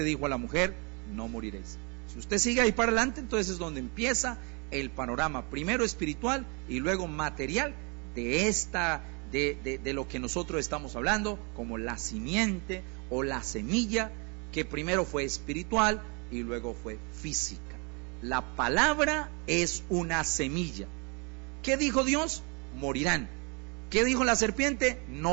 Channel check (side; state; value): left; quieter; 32.6 dB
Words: dijo a la mujer, no moriréis. Si usted sigue ahí para adelante, entonces es donde empieza el panorama, primero espiritual y luego material de lo que nosotros estamos hablando, como la simiente o la semilla, que primero fue espiritual y luego fue física. La palabra es una semilla. ¿Qué dijo Dios? Morirán. ¿Qué dijo la serpiente?